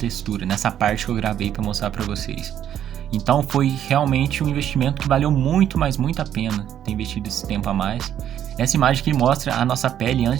nessa parte que eu gravei para mostrar para vocês. Então foi realmente um investimento que valeu muito, mas muito a pena ter investido esse tempo a mais. Essa imagem aqui mostra a nossa pele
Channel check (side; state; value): left; quieter; 10.3 dB